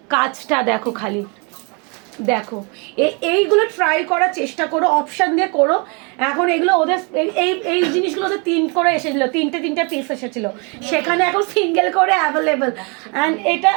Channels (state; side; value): quieter; left; 33.0 dB